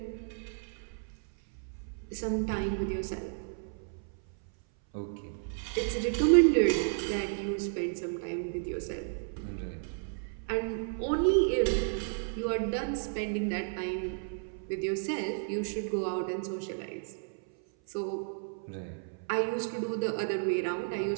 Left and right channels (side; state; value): left; silent; 56 dB below the other